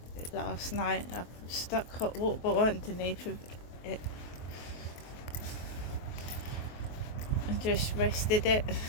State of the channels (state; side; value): late; right; 23 ms